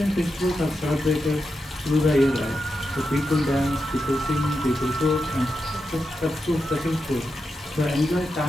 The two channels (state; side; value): normal; both; correlation 0.88